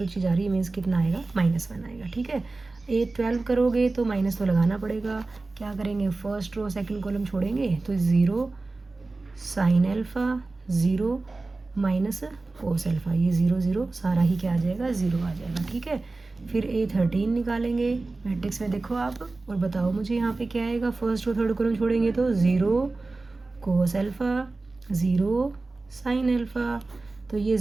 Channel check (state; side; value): quieter; left; 3.4 dB